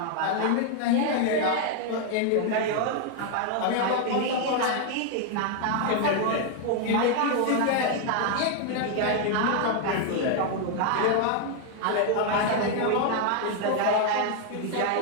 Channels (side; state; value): both; different; correlation 0.00